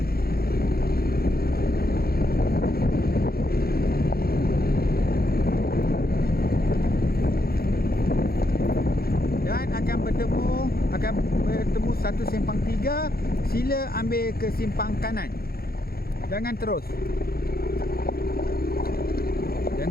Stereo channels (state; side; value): late; right; 0.44 ms